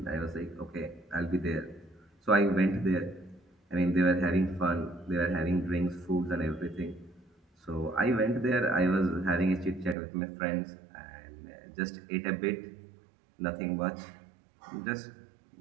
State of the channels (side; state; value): left; drops out; at 10.0 s